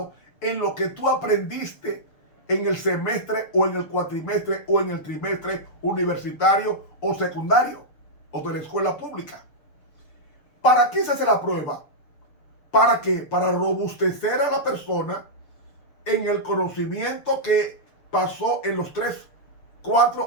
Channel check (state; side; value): late; right; 6.7 ms